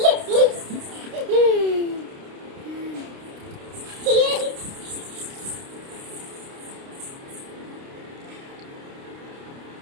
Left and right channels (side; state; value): left; late; 29 ms